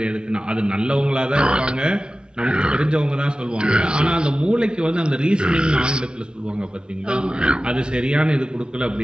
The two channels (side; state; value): left; late; 0.053 ms